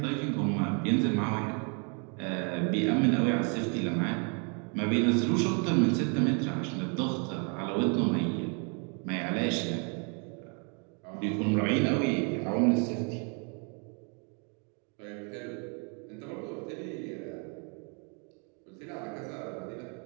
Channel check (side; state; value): left; quieter; 37.4 dB